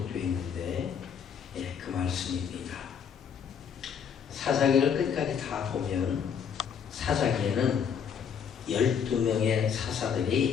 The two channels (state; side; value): quieter; right; 7.3 dB